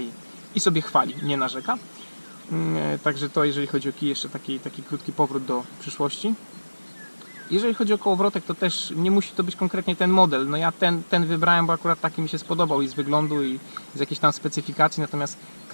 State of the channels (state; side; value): inverted; both; correlation -1.00